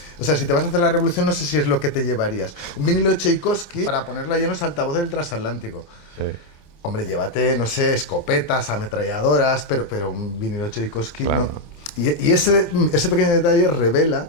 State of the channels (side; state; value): right; late; 27 ms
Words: o sea, si te vas a hacer la revolución, no sé si es lo que te llevarías. Un vinilo de Tchaikovsky para ponerlo allí en los altavoces del transatlántico. Sí. Hombre, llévate, no sé, escopetas, ametralladoras, pero un vinilo de Tchaikovsky no. Y ese pequeño detalle revela